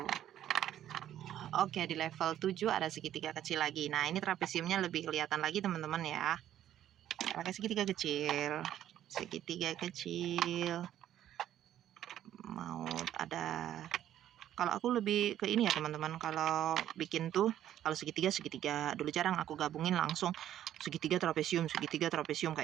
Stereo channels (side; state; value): left; quieter; 11.5 dB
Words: Oke, di level 7 ada segitiga kecil lagi. Nah, ini trapesiumnya lebih kelihatan lagi, teman-teman ya. Pakai segitiga kecil. Segitiga kecil. Mau ada... Kalau aku lebih ke ini ya, teman-teman. Kalau bikin tuh, kalau segitiga dulu jarang aku gabungin langsung segitiga trapesium